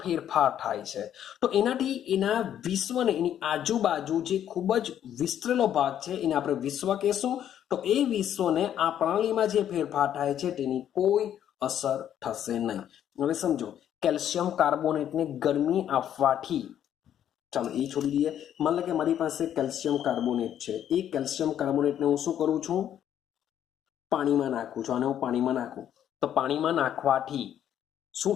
ફેરફાર થાય છે. તો એનાથી એના વિશ્વને, એની આજુબાજુ જે ખૂબ જ વિસ્તરેલો ભાગ છે એને આપણે વિશ્વ કહેશું. તો એ વિશ્વને આ પ્રણાલીમાં જે ફેરફાર થાય છે તેની કોઈ અસર થશે નહીં. હવે સમજો, કેલ્શિયમ કાર્બોનેટને ગરમી આપવાથી, ચાલો એ છોડી દઈએ, માન લો કે મારી પાસે કેલ્શિયમ કાર્બોનેટ છે, એ કેલ્શિયમ કાર્બોનેટને હું શું કરું છું? પાણીમાં નાખું છું. અને હું પાણીમાં નાખું તો પાણીમાં નાખવાથી શું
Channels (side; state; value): right; quieter; 10.3 dB